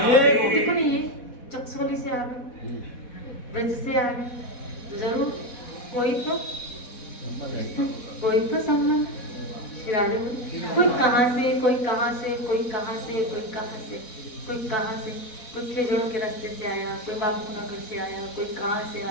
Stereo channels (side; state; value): right; late; 4.1 ms